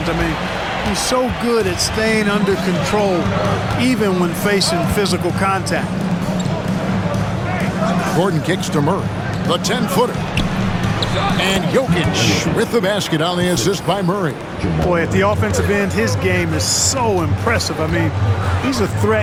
I mean, he's so good at staying under control even when facing physical contact. Gordon kicks to Murray. The 10-footer. And Jokic with the basket on the assist by Murray. Boy, at the offensive end, his game is so impressive. I mean, he's a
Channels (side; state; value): both; identical; correlation 1.00